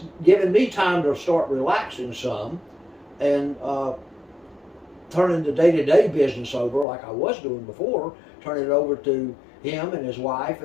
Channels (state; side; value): drops out; right; at 6.9 s